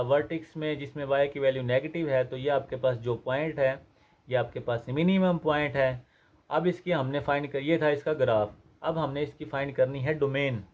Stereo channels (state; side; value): identical; both; correlation 1.00